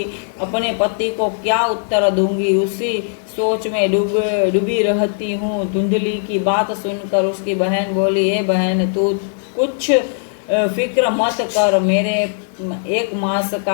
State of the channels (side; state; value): right; silent; digital silence